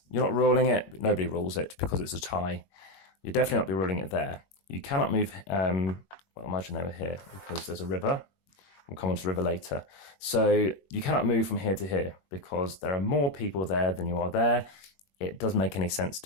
You're not ruling it. Nobody rules it because it's a tie. You'll definitely not be ruling it there. You cannot move, well, imagine they were here because there's a river. We'll come on to the river later. So you cannot move from here to here because there are more people there than you are there. It doesn't make any sense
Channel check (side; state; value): right; late; 21 ms